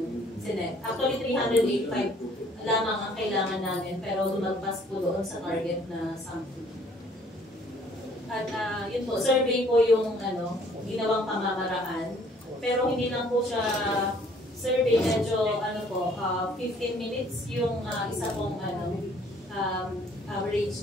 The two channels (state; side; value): normal; both; correlation 0.59